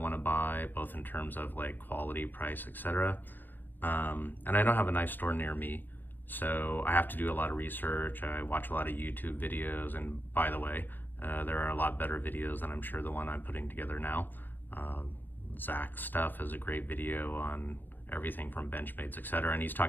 to buy, both in terms of like quality, price, etc. And I don't have a knife store near me, so I have to do a lot of research. I watch a lot of YouTube videos, and by the way, there are a lot better videos than I'm sure the one I'm putting together now. Zach's stuff is a great video on everything from Benchmades, etc. And he's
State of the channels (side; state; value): right; late; 0.092 ms